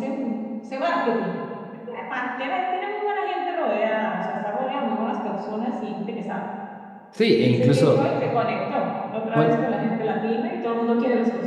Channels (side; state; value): both; identical; correlation 1.00